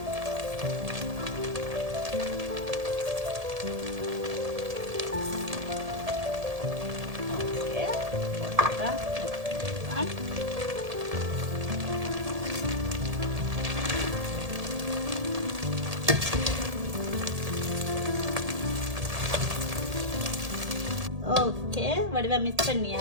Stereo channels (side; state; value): left; late; 1.8 ms